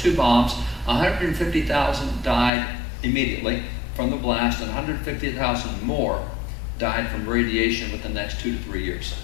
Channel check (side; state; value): right; drops out; at 2.5 s